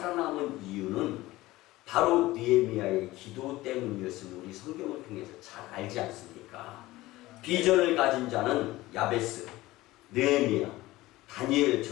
이유는 바로 느헤미야의 기도 때문이었음을 우리 성경을 통해서 잘 알지 않습니까? 비전을 가진 자는 야베스, 느헤미야,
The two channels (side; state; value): right; quieter; 18.1 dB